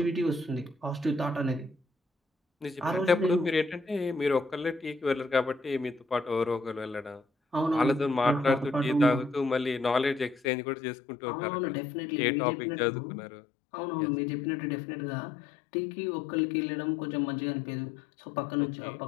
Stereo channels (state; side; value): drops out; right; at 10.5 s